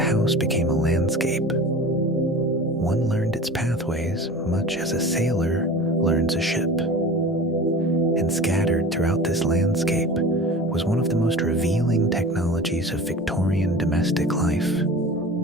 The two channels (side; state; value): both; normal; correlation 0.36